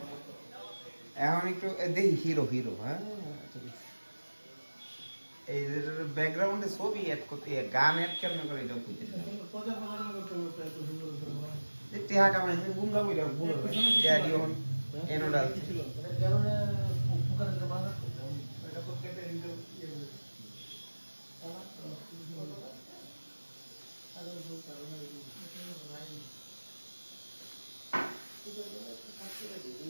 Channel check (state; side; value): inverted; both; correlation -1.00